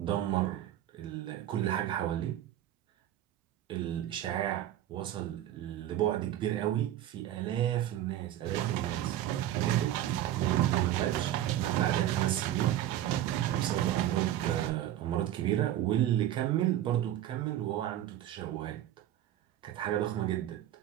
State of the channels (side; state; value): left; quieter; 12.5 dB